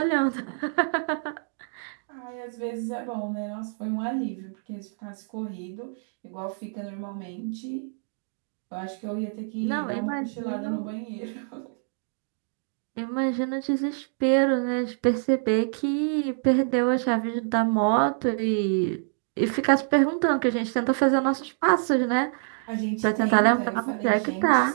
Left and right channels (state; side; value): silent; left; digital silence